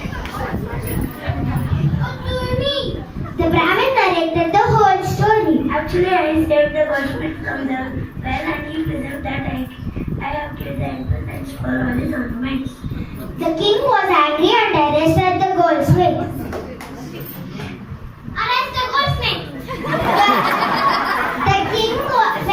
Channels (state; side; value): identical; both; correlation 1.00